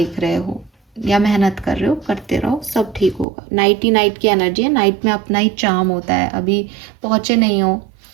रहे हो या मेहनत कर रहे हो, करते रहो, सब ठीक होगा। नाइट ही नाइट की एनर्जी है, नाइट में अपना ही चार्म होता है। अभी पहुँचे नहीं हो,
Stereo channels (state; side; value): drops out; left; at 3.2 s